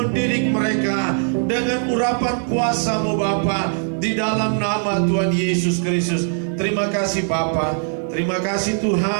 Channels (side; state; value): left; silent; 58 dB below the other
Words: mereka dengan urapan kuasa-Mu Bapa. Di dalam nama Tuhan Yesus Kristus. Terima kasih Bapa, terima kasih